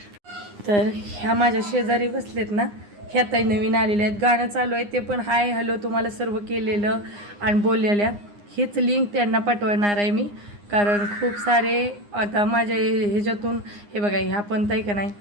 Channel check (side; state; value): left; late; 9.7 ms